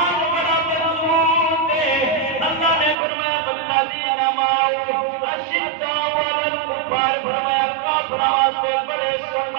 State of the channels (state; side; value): drops out; left; at 3.0 s